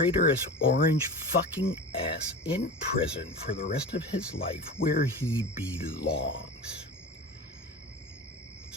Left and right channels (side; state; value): both; normal; correlation 0.31